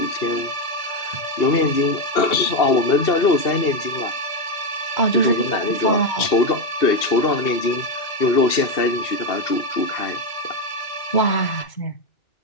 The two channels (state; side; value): late; right; 2.7 ms